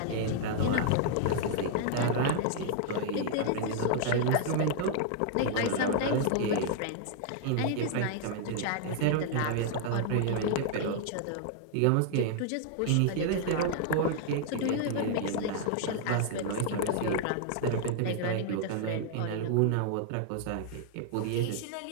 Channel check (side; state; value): both; different; correlation -0.01